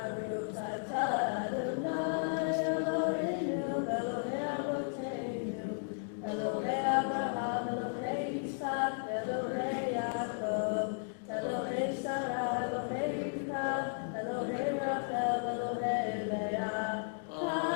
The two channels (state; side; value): silent; right; digital silence